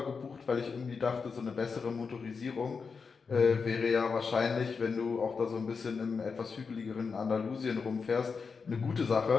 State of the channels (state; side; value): quieter; right; 5.2 dB